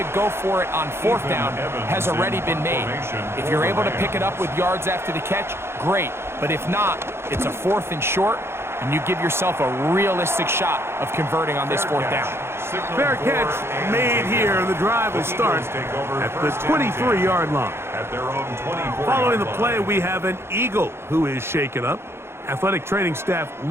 go for it on 4th down has already been made. If you're able to pick it up with yards after the catch, great. But if not, it's a 4th and short, and you give yourself a realistic shot of converting on this 4th down. Fair catch made here, and the drive will start at the 23-yard line. Following the play, we have an Eagle who is shaken up. Athletic training staff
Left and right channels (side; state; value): left; late; 0.12 ms